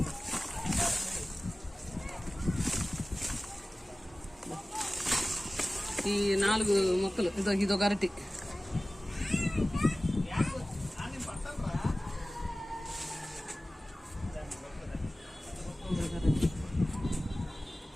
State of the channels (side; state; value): both; normal; correlation 0.97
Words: ఈ 4 మొక్కలు, ఇదొక అరటి.